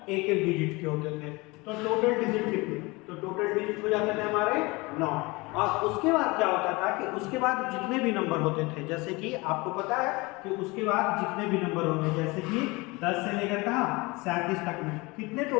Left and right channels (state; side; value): quieter; right; 24.4 dB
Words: एक एक डिजिट के होते थे। तो टोटल डिजिट कितने? तो टोटल डिजिट हो जाते थे हमारे 9। और उसके बाद क्या होता था कि उसके बाद जितने भी नंबर होते थे, जैसे कि आपको पता है कि उसके बाद जितने भी नंबर होंगे, जैसे कि 10 से लेकर कहाँ 37 तक में कितने